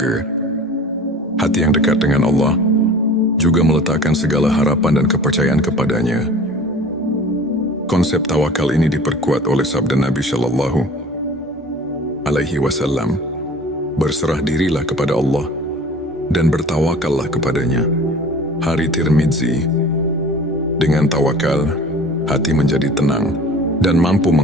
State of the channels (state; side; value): normal; both; correlation 0.43